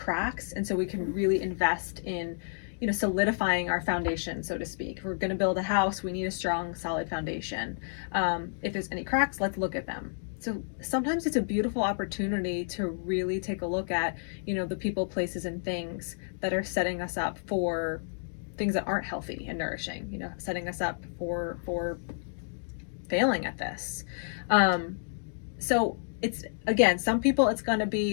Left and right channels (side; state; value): right; silent; digital silence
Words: and so we can really invest in solidifying our foundation, so to speak. If we're going to build a house, we need a strong, solid foundation. If there's any cracks, let's look at them. So sometimes it's a beautiful opportunity to really take a look at the people, places, and things that are setting us up for things that aren't healthy and nourishing, setting us up for failing at this. So it's, again, some people it's going to